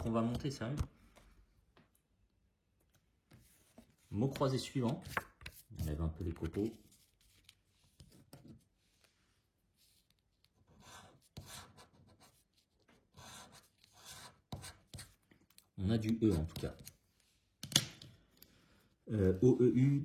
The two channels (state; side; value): identical; both; correlation 1.00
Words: qu'on va monter, sérieux. Mot croisé suivant. On enlève un peu les copeaux. On a du E en tout cas. O, E, U,